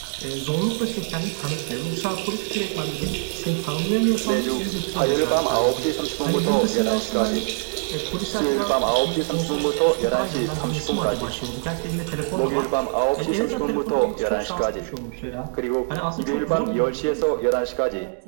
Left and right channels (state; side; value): silent; left; digital silence